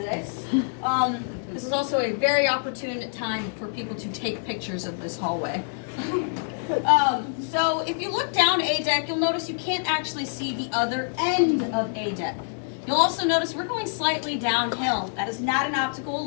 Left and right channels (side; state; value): right; silent; digital silence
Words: This is also a very opportune time for people to take pictures of this hallway. So if you look down A deck, you'll notice you can't actually see the other end of A deck. You'll also notice we're going slightly downhill. That is not an optical